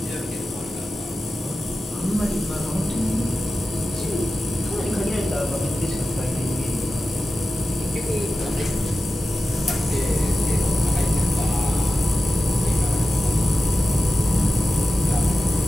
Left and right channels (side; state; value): both; normal; correlation 0.93